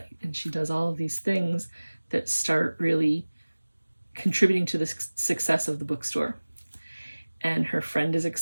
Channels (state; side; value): inverted; both; correlation -1.00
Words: and she does all of these things that start really contributing to the success of the bookstore. And her friend is